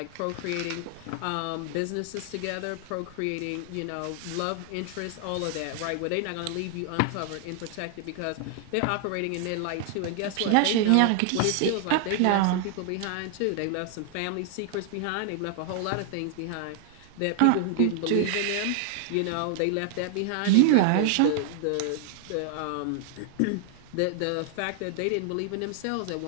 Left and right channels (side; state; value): both; different; correlation 0.00